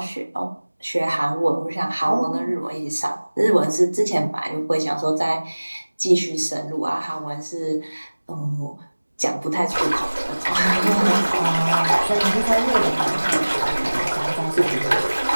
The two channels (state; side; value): inverted; both; correlation -1.00